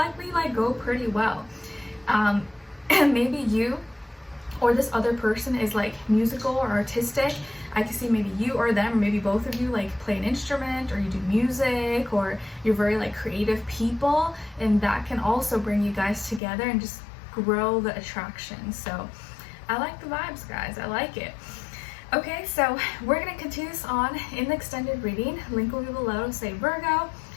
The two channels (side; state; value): right; drops out; at 16.4 s